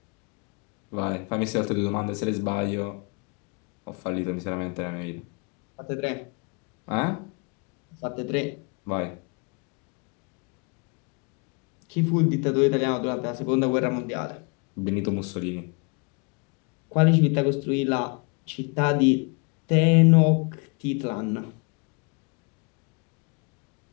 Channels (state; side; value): quieter; right; 33.4 dB